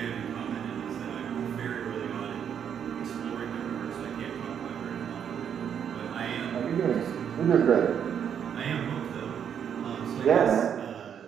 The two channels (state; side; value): quieter; left; 8.3 dB